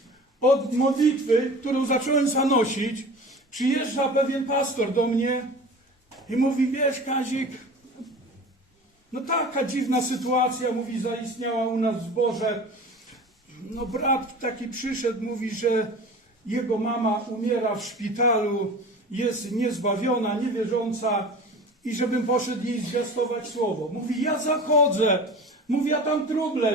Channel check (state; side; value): normal; both; correlation 0.38